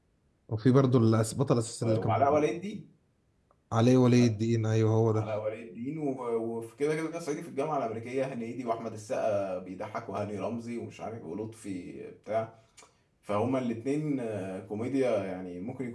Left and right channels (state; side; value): identical; both; correlation 1.00